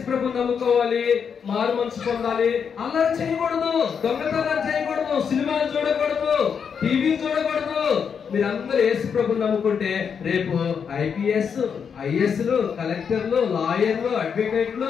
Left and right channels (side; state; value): right; quieter; 6.8 dB